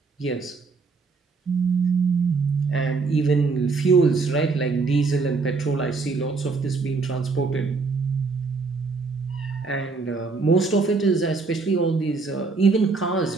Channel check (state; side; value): quieter; left; 4.2 dB